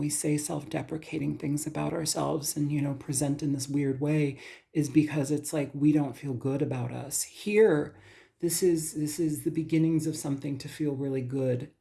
say self-deprecating things about ourselves and, present in this weird way is because it's like we don't feel good about us. Here, this is the beginnings of something to feel really good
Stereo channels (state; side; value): identical; both; correlation 1.00